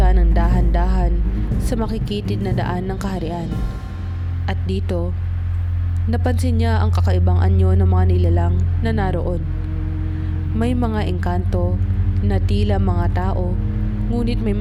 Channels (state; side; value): identical; both; correlation 1.00